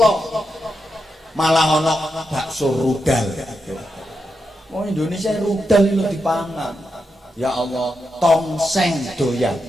Malah ono bakso rudal. Wong Indonesia rudal itu dipangan. Ya Allah, tongseng doyan.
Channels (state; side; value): normal; both; correlation 0.86